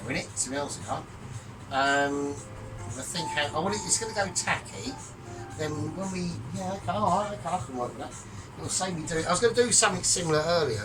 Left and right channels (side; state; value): both; identical; correlation 1.00